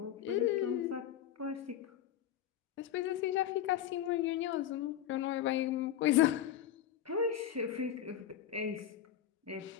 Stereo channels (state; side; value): quieter; right; 10.4 dB